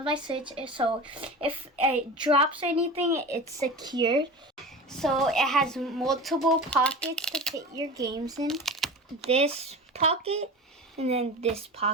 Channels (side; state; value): both; normal; correlation 0.32